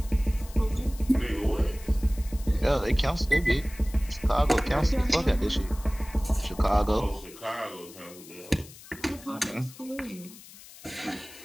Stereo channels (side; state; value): left; noise; hiss, 19 dB below the sound